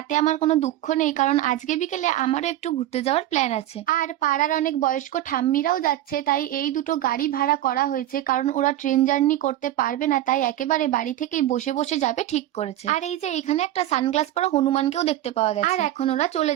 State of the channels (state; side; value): quieter; left; 13.6 dB